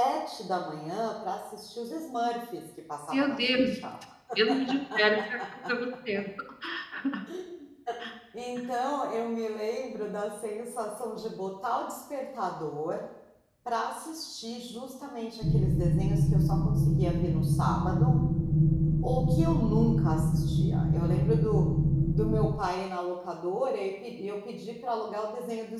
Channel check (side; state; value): both; identical; correlation 1.00